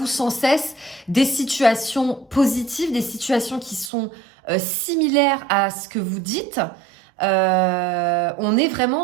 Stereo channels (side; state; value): left; drops out; at 3.9 s